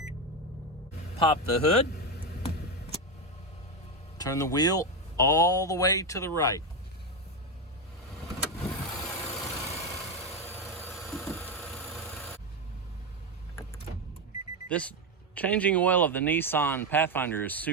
Pop the hood. Turn the wheel all the way to the right. This changing oil of the Nissan Pathfinder is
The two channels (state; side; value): normal; both; correlation 0.10